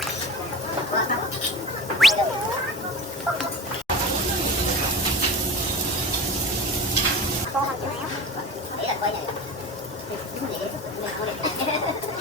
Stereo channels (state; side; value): normal; both; correlation 0.33